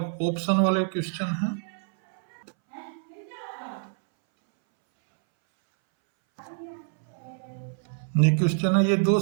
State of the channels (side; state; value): left; silent; 60 dB below the other